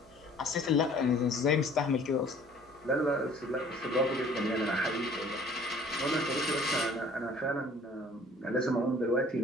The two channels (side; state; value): both; normal; correlation 0.52